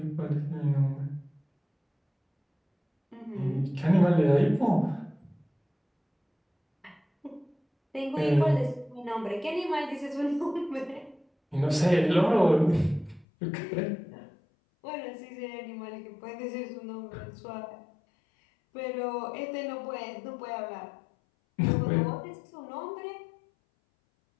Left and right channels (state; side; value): drops out; right; at 13.2 s